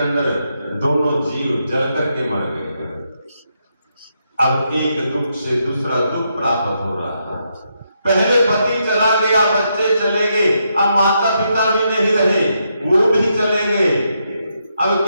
अंदर दोनों जीव जल करके मर गए। अब एक दुख से दूसरा दुख प्राप्त हो रहा है। पहले पति चला गया, बच्चे चले गए, अब माता पिता भी नहीं रहे, वो भी चले गए। अब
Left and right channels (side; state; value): both; inverted; correlation -0.80